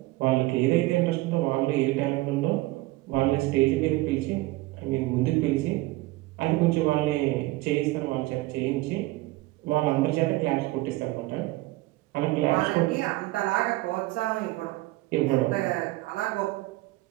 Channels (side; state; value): left; quieter; 19.7 dB